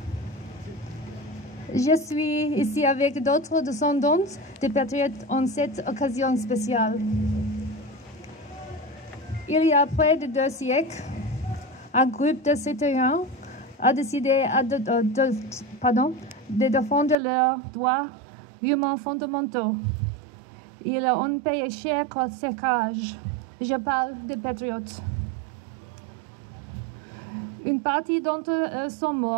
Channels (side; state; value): left; drops out; at 17.2 s